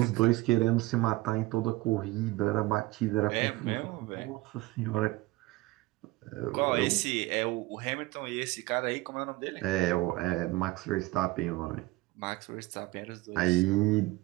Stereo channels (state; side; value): quieter; left; 20.0 dB